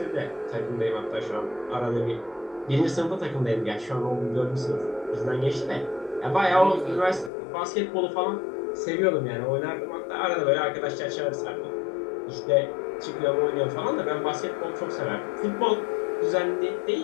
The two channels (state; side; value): drops out; right; at 7.3 s